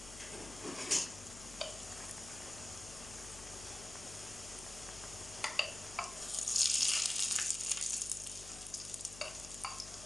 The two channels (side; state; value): left; noise; hum, 14 dB below the sound